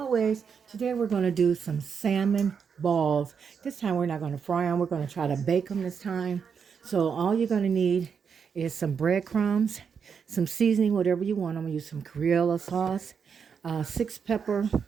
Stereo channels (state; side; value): quieter; left; 6.5 dB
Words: today we're going to do some salmon balls. This time, we're not going to fry them, we're going to try to bake them this time. So, all you're going to need is some breadcrumbs, some seasoning, whatever you want. I'm going to use some Crayola sauce, 6 pepper